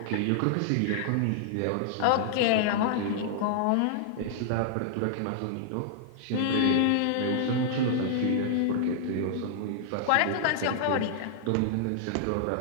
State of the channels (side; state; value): both; different; correlation -0.01